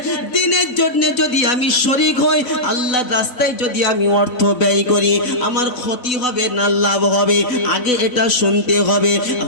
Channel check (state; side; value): late; right; 4.0 ms